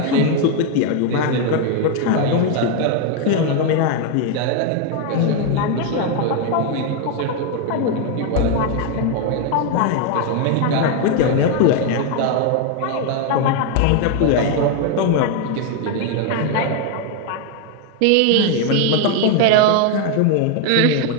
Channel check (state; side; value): different; both; correlation 0.01